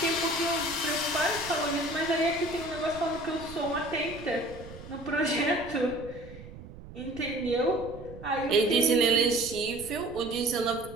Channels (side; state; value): right; noise; rumble, 15 dB below the sound